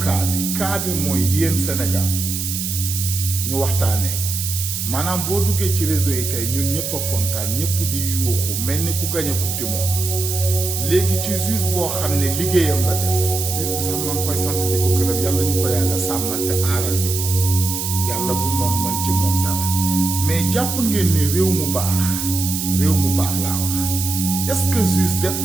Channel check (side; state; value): right; noise; hiss, 3 dB below the sound